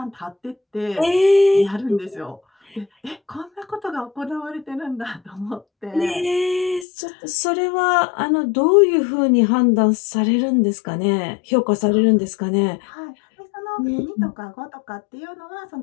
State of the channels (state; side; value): drops out; right; at 6.9 s